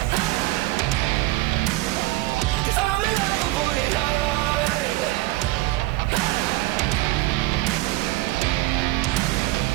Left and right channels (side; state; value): left; quieter; 19.0 dB